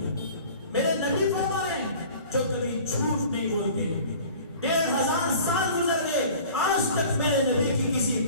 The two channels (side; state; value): both; inverted; correlation -0.45